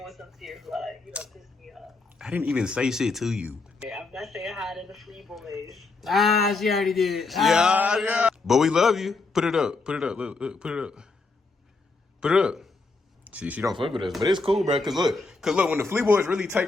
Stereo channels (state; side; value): quieter; right; 3.8 dB